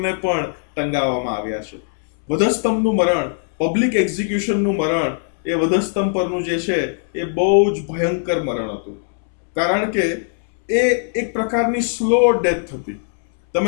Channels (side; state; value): right; silent; 66 dB below the other